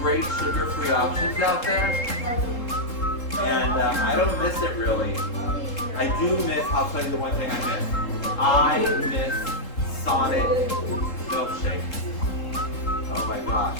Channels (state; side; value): late; right; 3.7 ms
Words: sugar-free options out there, and I don't miss it really. I do miss, I'll tell you the one thing I miss. I miss Sonic milkshakes. Oh my gosh.